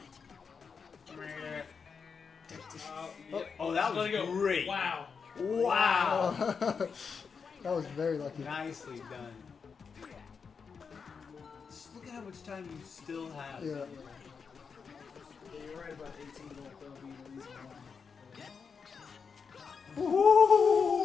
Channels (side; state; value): right; quieter; 5.8 dB